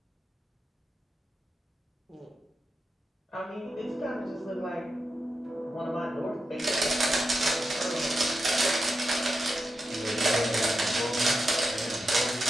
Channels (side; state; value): both; normal; correlation 0.88